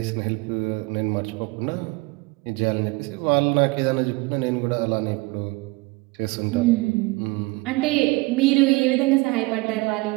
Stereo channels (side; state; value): left; quieter; 24.4 dB